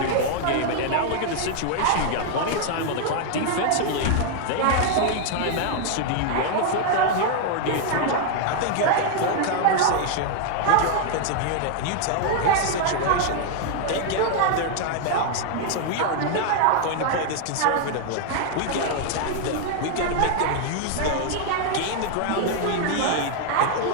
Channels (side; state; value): both; different; correlation 0.00